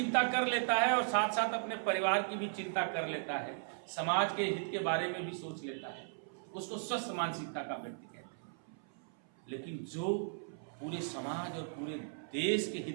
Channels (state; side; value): silent; left; 53 dB below the other